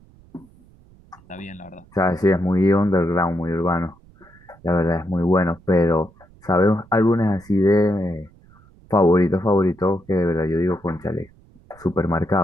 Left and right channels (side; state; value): right; noise; rumble, 27 dB below the sound